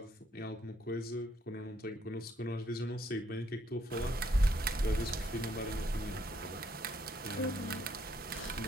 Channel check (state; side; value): normal; both; correlation 0.71